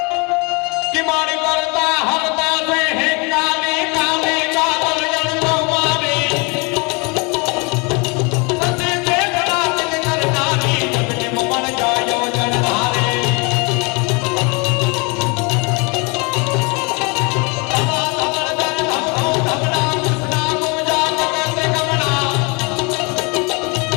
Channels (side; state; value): right; quieter; 30.5 dB